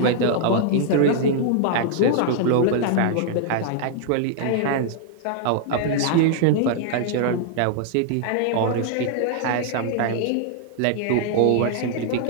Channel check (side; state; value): both; different; correlation 0.00